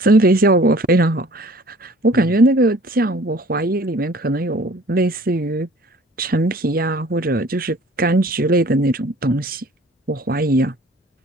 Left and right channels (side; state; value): both; normal; correlation 0.51